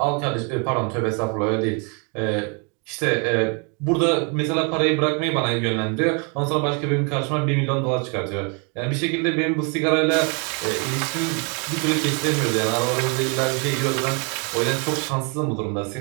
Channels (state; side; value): quieter; left; 35.6 dB